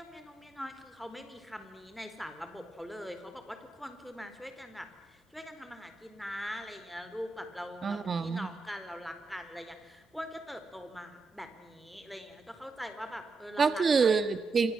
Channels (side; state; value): left; quieter; 3.9 dB